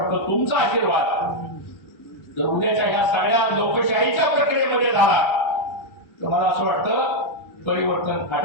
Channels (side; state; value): right; late; 1.3 ms